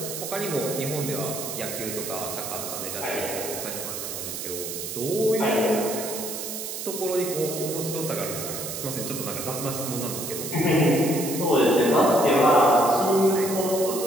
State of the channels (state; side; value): noise; right; hiss, 6 dB below the sound